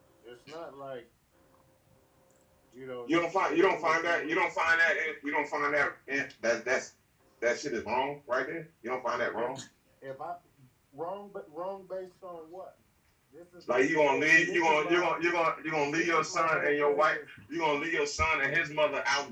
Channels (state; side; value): identical; both; correlation 1.00